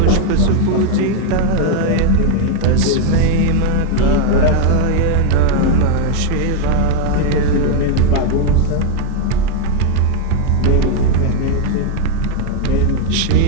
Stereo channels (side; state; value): both; different; correlation 0.01